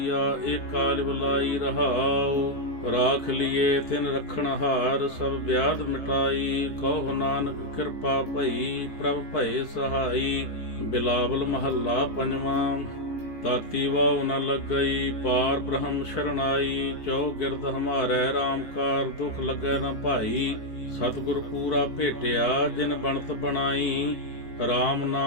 ਏਕ ਕਾਲ ਬੁਲਾਈ ਰਹਾਉ। ਰਾਖ ਲੀਏ ਤਿਨ ਰਖਣ ਹਾਰ ਸਭ ਵਿਆਧ ਮਿਟਾਈ। ਕਹੋ ਨਾਨਕ ਕਿਰਪਾ ਭਈ ਪ੍ਰਭ ਭਏ ਸਹਾਈ। ਬਿਲਾਵਲ ਮਹੱਲਾ ਪੰਜਵਾਂ। ਤਾਤੀ ਵਾਉ ਨ ਲੱਗਈ ਪਾਰ ਬ੍ਰਹਮ ਸ਼ਰਨਾਈ। ਜੋ ਗਿਰਦ ਹਮਾਰੇ RAM ਕਾਰ ਦੁਖ ਲਗੈ ਨ ਭਾਈ। ਸਤਿਗੁਰ ਪੂਰਾ ਭੇਟਿਆ ਜਿਨ ਬਣਤ ਬਣਾਈ। RAM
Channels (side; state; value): right; late; 18 ms